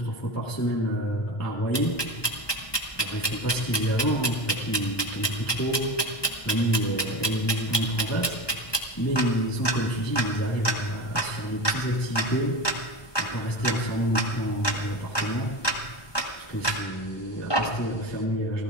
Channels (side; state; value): right; late; 1.2 ms